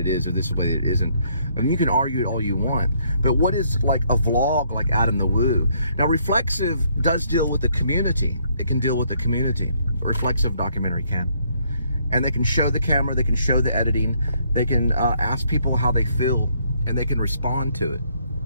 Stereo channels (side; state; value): both; inverted; correlation -0.69